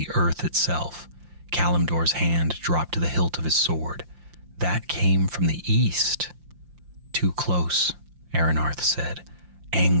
earth itself. Kalimdor's hand dropped to the hilt of his sword. "That came from the east." "Too close," Aranarth said.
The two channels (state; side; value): late; left; 5.7 ms